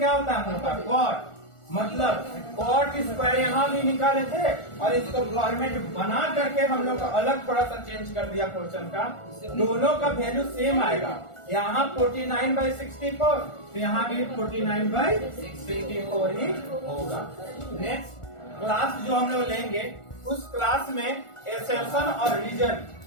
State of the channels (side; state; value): right; late; 1.4 ms